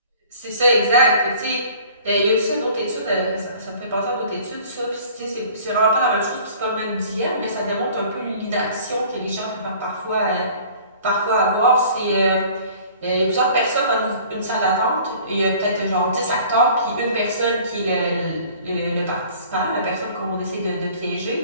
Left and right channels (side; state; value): both; inverted; correlation -0.49